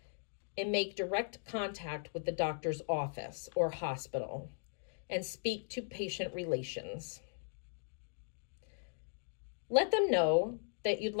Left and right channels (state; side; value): silent; right; digital silence